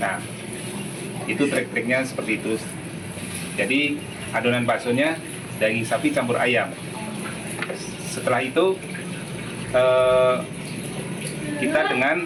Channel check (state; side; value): identical; both; correlation 1.00